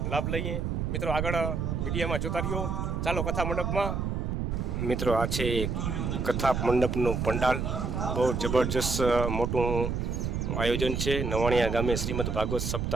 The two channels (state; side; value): noise; right; rumble, 1 dB below the sound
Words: લાભ લઈએ। મિત્રો આગળ વિડીયોમાં જોતા રહ્યો, ચાલો કથા મંડપમાં। મિત્રો આ છે કથા મંડપનું પંડાલ, બહુ જબરજસ્ત મોટું આયોજન છે। નવાણિયા ગામે શ્રીમદ ભાગવત